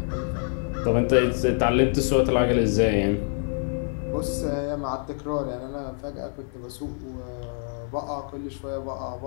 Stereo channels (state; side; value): silent; right; 61 dB below the other